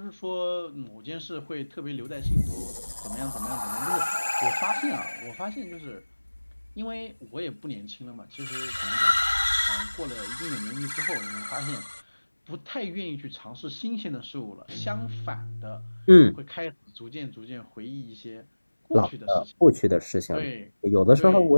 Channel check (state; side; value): inverted; both; correlation -1.00